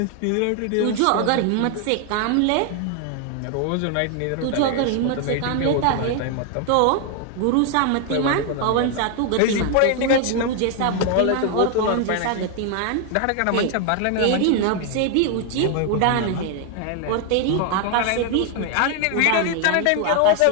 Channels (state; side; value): different; both; correlation 0.01